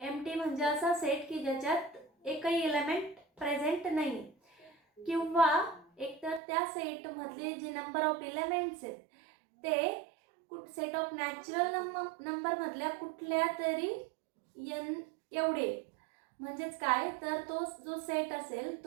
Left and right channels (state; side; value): drops out; left; at 6.4 s